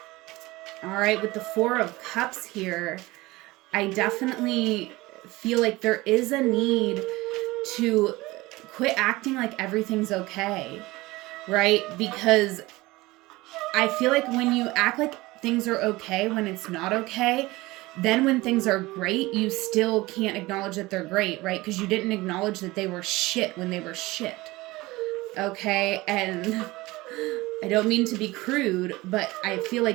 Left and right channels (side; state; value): left; quieter; 20.4 dB